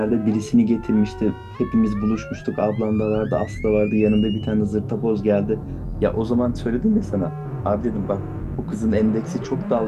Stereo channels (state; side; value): identical; both; correlation 1.00